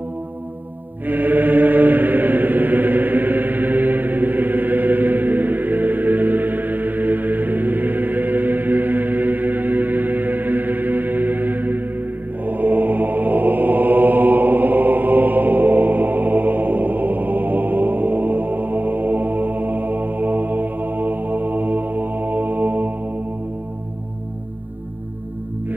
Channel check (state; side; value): late; left; 0.086 ms